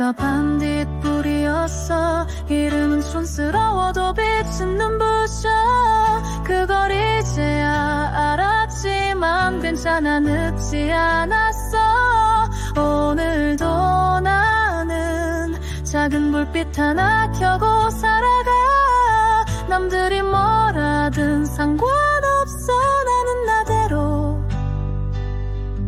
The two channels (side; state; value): both; identical; correlation 1.00